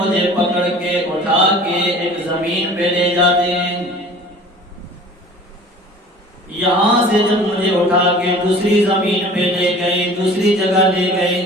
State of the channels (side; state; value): both; normal; correlation 0.45